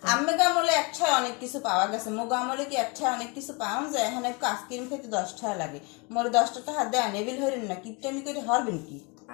আম্মে গামলে একটায় অনেক কিছু পাওয়া গেছে, মোগো আমলে কি একটায় অনেক কিছু পাওয়া যায়? এখানে একটু আইসক্রিম খেতে 10 টাকা লাগে। মোরে 10টা টাকা দেন, এবিল হইলেন না, কিপটামি করে হরবেন কি?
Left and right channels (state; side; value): quieter; right; 30.0 dB